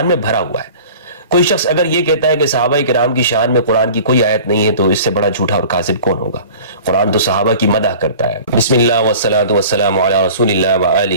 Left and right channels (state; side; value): inverted; both; correlation -0.42